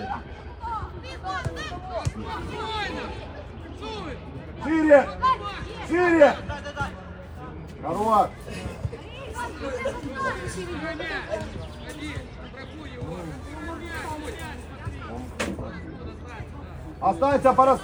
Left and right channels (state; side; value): identical; both; correlation 1.00